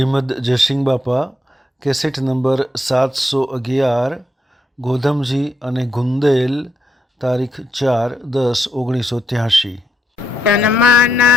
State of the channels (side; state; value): both; normal; correlation 0.79